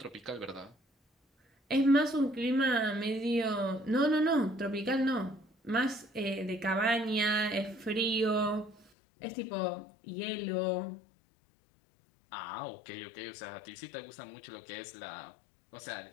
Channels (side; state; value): right; drops out; at 8.9 s